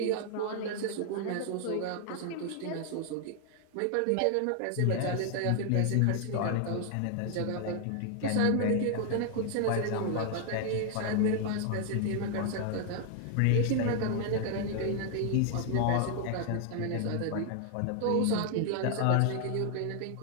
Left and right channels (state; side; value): different; both; correlation 0.00